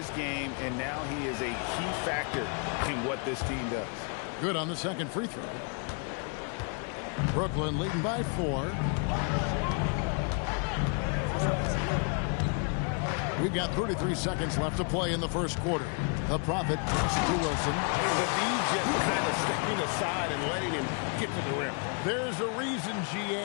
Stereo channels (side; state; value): right; quieter; 37.9 dB